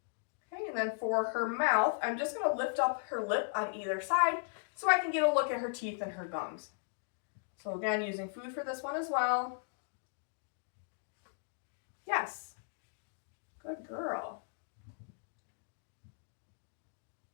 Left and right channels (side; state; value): right; silent; digital silence